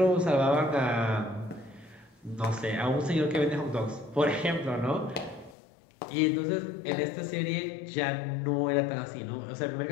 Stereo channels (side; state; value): right; drops out; at 5.6 s